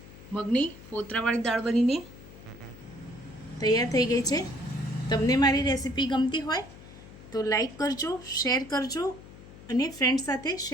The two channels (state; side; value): noise; left; hum, 18 dB below the sound